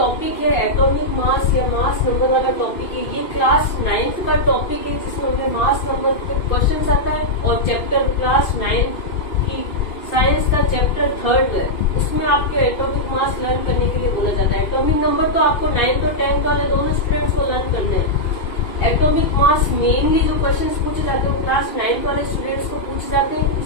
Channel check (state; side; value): late; right; 2.5 ms